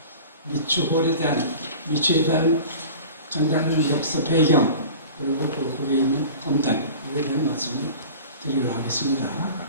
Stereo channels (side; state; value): both; inverted; correlation -0.39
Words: 미추홀에 대한 미추에 대한 장단의 역사 배경 그리고 거기에 있는 검단 이에 대한 말씀을 드리도록 하겠습니다.